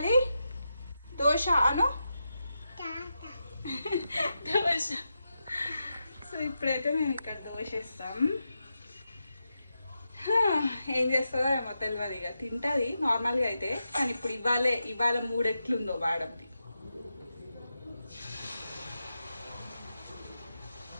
దోశ అను. దోశ. సో ఇప్పుడైతే మేము ఇక్కడ దోశ ఇస్తాం. ఏం చేస్తుందో ఏమో తెలియదు. ఇక తింటుంది నార్మల్గా అయితే, కానీ ఇప్పుడు ఇవాళ మూడు ఎట్లుందో వాడంది.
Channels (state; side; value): inverted; both; correlation -0.88